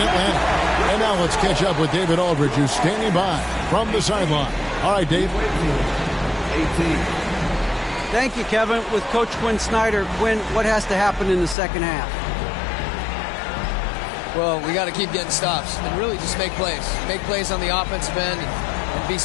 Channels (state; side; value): drops out; right; at 11.6 s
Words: Atlanta. And now let's catch up with David Aldridge, who's standing by from the sideline. All right, Dave. 18. Thank you, Kevin. With Coach Quinn Snyder, Quinn, what has to happen in the second half? Well, we got to keep getting stops and really just make plays. Make plays on the offensive end and be